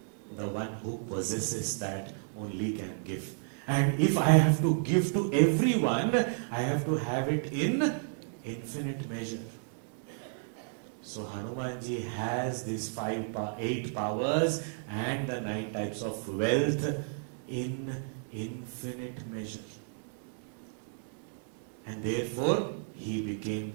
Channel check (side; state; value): left; silent; digital silence